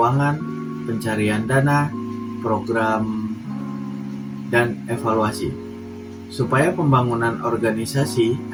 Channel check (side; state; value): both; identical; correlation 1.00